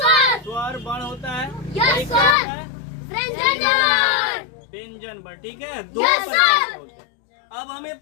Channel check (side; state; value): right; drops out; at 2.4 s